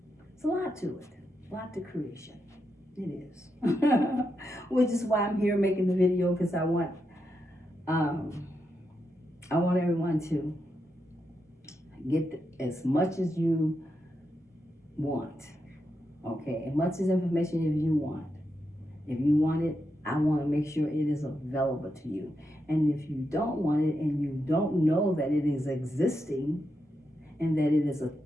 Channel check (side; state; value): both; normal; correlation 0.85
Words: It's a lot to it. A lot to creation. It is. Which is why I'm here making the video, because I want everyone to get as much as you want. Okay, as much as information as you want. If you want it, I want to make sure it is available to you. And if you don't want it and you don't know that it is existing and that it is a